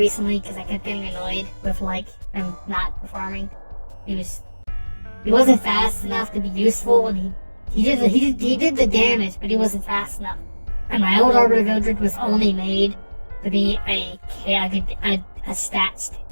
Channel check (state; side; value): inverted; both; correlation -1.00